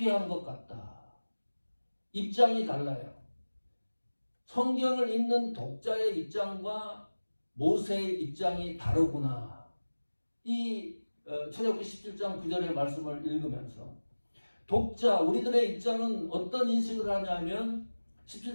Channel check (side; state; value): both; inverted; correlation -1.00